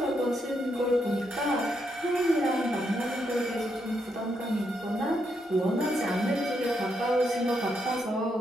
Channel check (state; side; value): normal; both; correlation 0.79